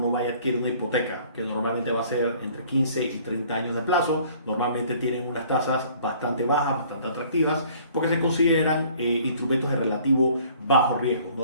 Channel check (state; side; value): inverted; both; correlation -0.55